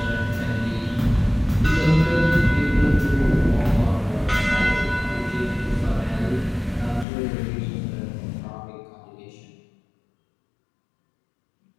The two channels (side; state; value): right; drops out; at 7.1 s